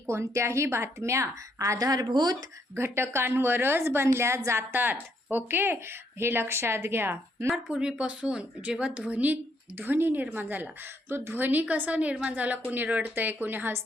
कोणत्याही बातम्या आधारभूत घटकांवरच बनल्या जातात. ओके, हे लक्षात घ्या. पूर्वीपासून जेव्हा ध्वनी निर्माण झाला, तो ध्वनी कसा निर्माण झाला? कोणी रडतंय, कोणी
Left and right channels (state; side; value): normal; both; correlation 0.73